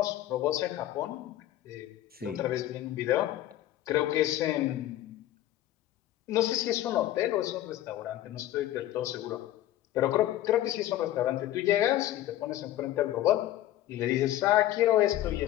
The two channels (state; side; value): quieter; right; 13.8 dB